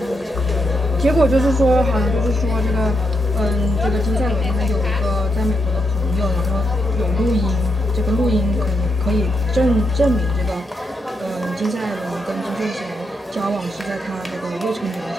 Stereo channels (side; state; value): both; normal; correlation 0.81